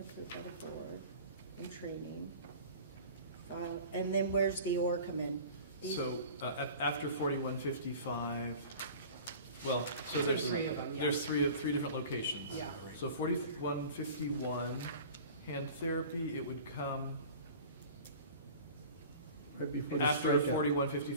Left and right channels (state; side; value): inverted; both; correlation -0.42